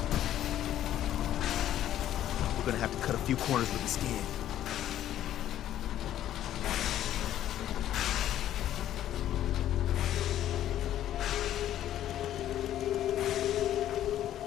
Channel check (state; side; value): quieter; right; 12.0 dB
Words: We're gonna have to cut a few corners with the skin.